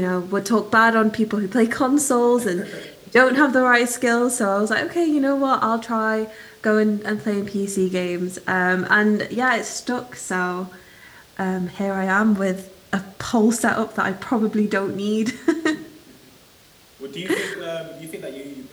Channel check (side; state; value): both; identical; correlation 1.00